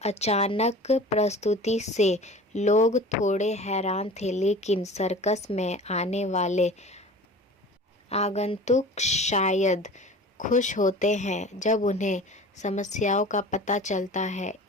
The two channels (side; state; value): both; normal; correlation 0.40